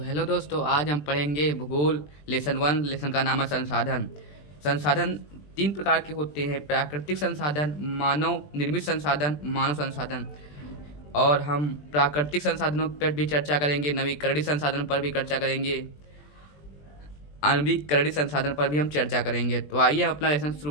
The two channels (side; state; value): right; late; 20 ms